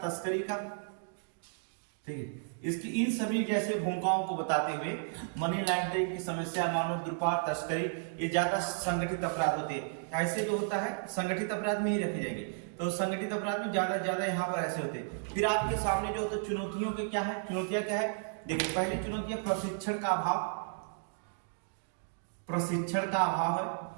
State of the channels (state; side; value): silent; left; digital silence